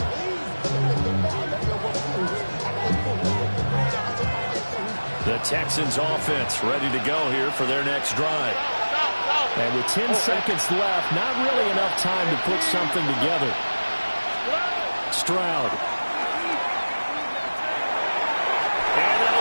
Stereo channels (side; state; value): both; inverted; correlation -1.00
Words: The Texans offense ready to go here for their next drive. And with 10 seconds left, not really enough time to put something together. Stroud. And